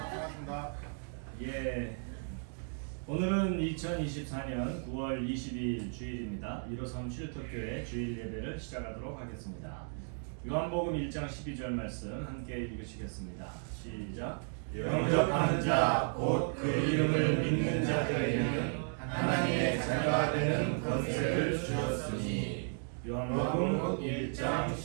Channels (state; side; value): silent; left; 55 dB below the other